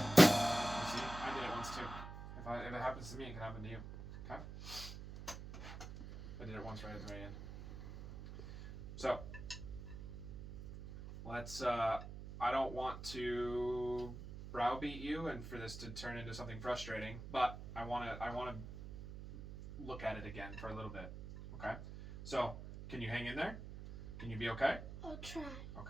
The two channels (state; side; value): noise; right; hum, 10 dB below the sound